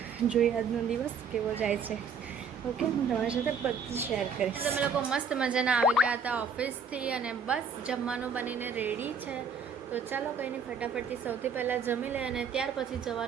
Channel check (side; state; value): left; quieter; 5.5 dB